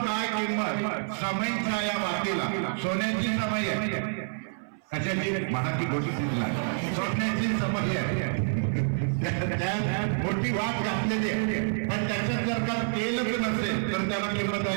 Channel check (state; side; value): silent; left; 59 dB below the other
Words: किंमत, समईच्या या वाटीला सोन्याची समय आहे, कशाची महाची गोष्टी सोन्याची समय आहे, मोठी वाट घातलेली आहे। पण त्याच्यात जर का तेल नसेल तर त्याला किंमत